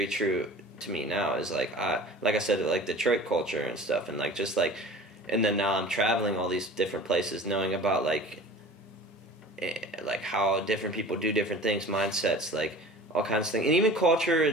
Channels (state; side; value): normal; both; correlation 0.41